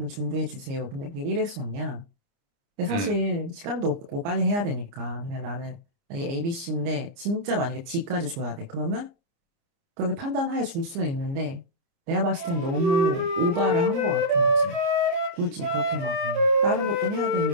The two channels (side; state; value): left; late; 29 ms